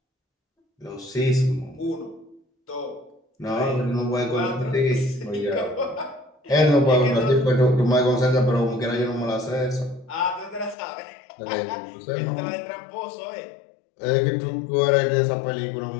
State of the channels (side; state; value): right; drops out; at 10.8 s